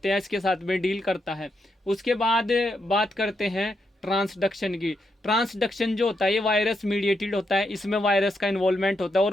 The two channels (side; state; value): both; normal; correlation 0.81